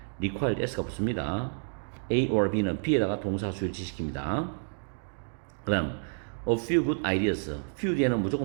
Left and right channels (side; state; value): left; silent; 58 dB below the other